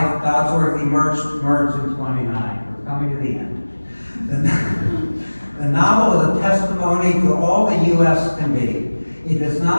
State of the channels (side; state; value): both; inverted; correlation -1.00